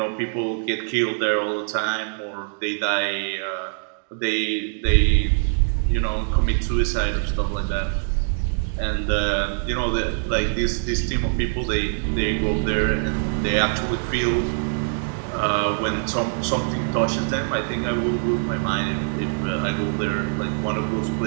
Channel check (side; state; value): left; silent; digital silence